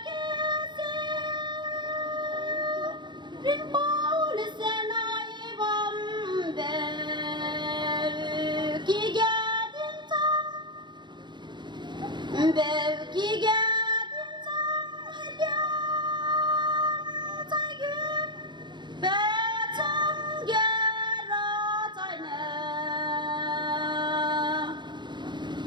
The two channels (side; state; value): left; late; 0.22 ms